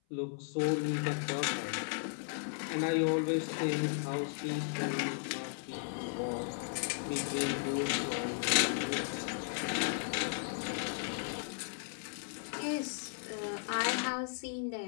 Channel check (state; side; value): silent; right; 54 dB below the other